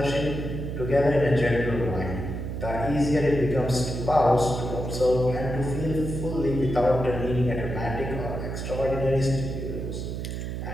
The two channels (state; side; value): noise; right; hum, 5 dB below the sound